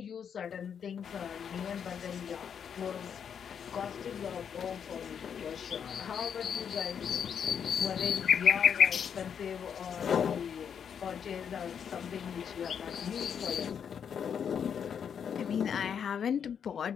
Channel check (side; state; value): right; quieter; 7.6 dB